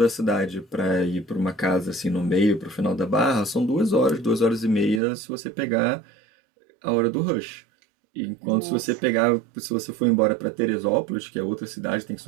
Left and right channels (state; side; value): drops out; left; at 5.0 s